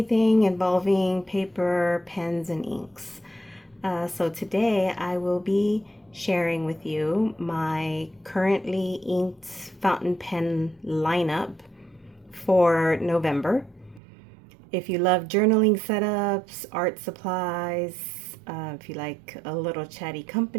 involving paper, pens, and inks. So today I will be sharing with you my currently inked fountain pen lineup for November. If you love journaling setups, art supplies, if you like a little chatty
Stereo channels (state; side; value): drops out; left; at 14.0 s